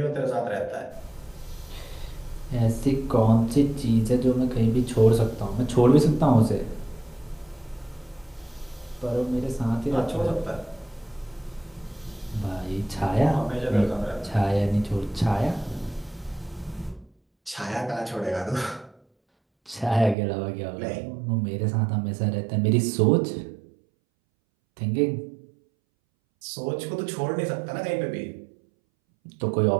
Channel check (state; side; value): drops out; left; at 20.2 s